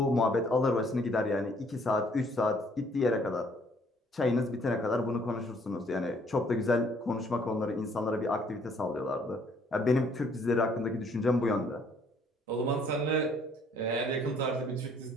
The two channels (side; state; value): both; normal; correlation 0.63